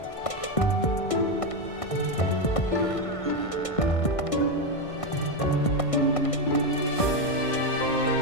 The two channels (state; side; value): late; right; 1.6 ms